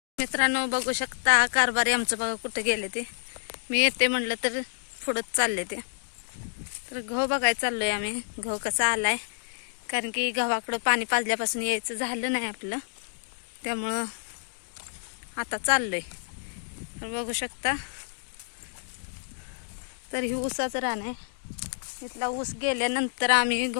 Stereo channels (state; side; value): silent; right; digital silence